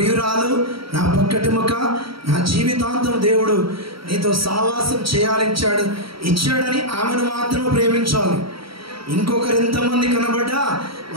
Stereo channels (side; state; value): left; late; 0.75 ms